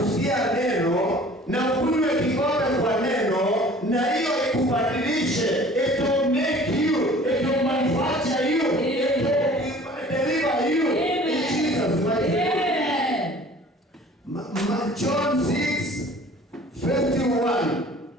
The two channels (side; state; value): both; normal; correlation 0.48